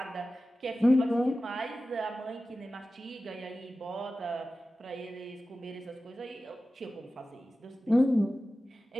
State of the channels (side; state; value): both; normal; correlation 0.95